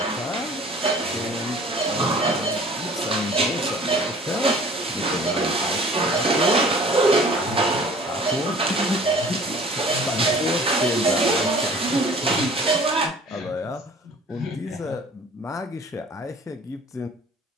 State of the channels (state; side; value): normal; both; correlation 0.49